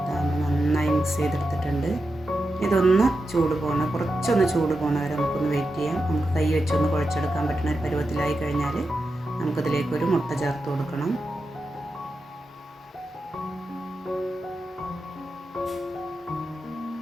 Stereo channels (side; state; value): both; normal; correlation 0.89